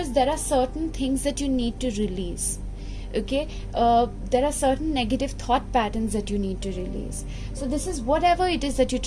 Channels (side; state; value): both; identical; correlation 1.00